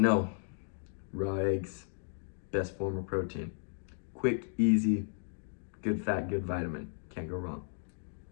raw eggs, best form of protein. Quick, easy, good fat, good vitamin. Can't go wrong.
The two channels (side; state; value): right; silent; digital silence